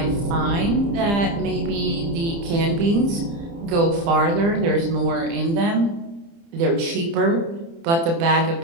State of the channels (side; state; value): left; late; 30 ms